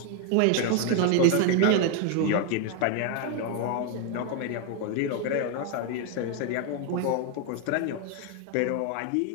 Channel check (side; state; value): both; different; correlation 0.01